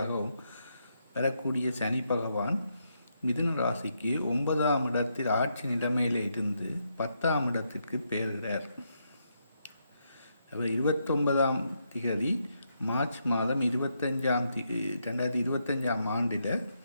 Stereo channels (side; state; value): both; inverted; correlation -0.80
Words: வரக்கூடிய சனி பகவான் மிதுன ராசிக்கு 9ஆம் இடத்தில் ஆட்சி நிலைமையில் இருந்து 10ஆம் இடத்திற்கு பெயர்கிறார். 29ஆம் திகதி மார்ச் மாதம் 2025 ஆண்டில்